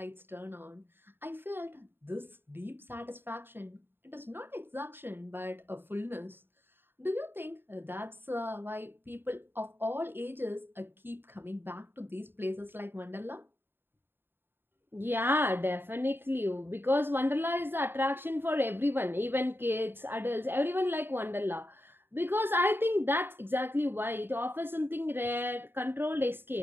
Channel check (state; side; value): late; left; 0.10 ms